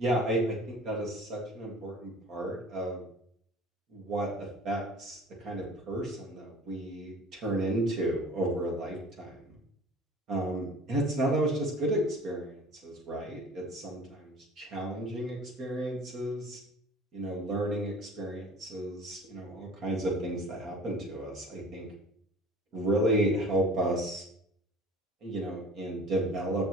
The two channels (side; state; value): both; normal; correlation 0.45